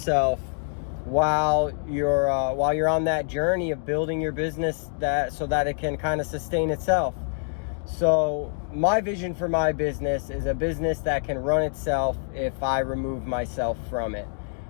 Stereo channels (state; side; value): silent; right; digital silence